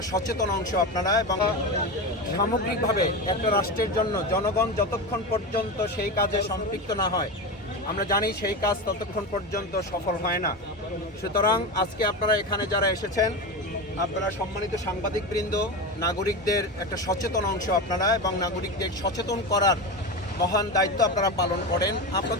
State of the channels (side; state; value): both; normal; correlation 0.21